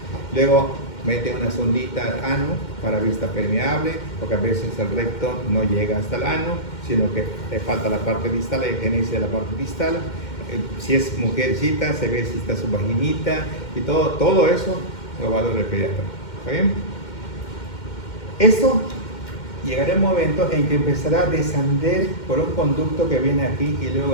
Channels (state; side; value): late; right; 2.1 ms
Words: Luego mete una sondita al ano para vista permeable, porque a veces el recto no llega hasta el ano, sino que le falta la parte distal, la higieniza de la parte distal. Si es mujercita, se ve si está su vaginita y todo eso lo va a ver el pediatra. ¿Está bien? Esto llegará un momento en que empezará a descender por un conducto que viene aquí y